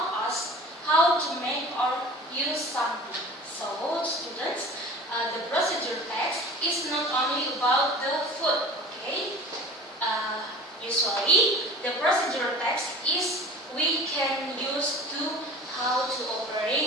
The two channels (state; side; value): normal; both; correlation 0.40